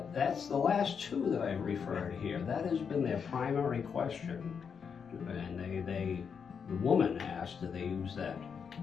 the last two that I've referred here. That has been their primary question. And the woman asked, do they use that?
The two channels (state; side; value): quieter; right; 6.6 dB